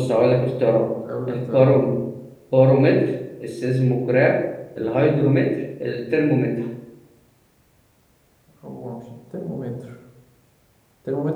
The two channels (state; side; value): identical; both; correlation 1.00